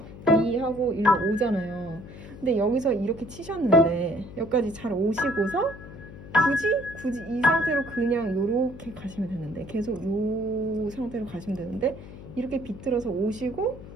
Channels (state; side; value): noise; left; hum, 15 dB below the sound